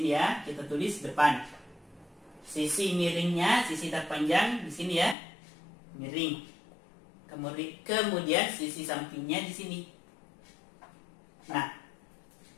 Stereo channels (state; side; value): drops out; right; at 5.2 s